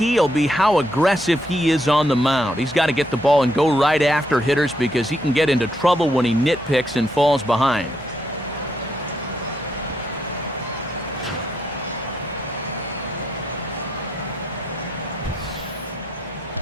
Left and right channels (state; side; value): normal; both; correlation 0.77